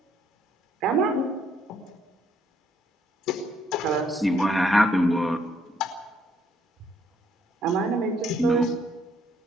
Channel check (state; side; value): normal; both; correlation 0.69